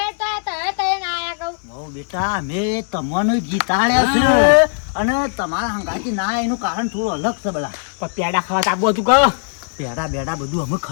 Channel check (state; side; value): silent; right; 60 dB below the other